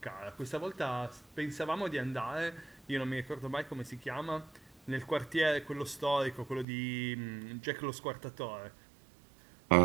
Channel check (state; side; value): drops out; left; at 6.7 s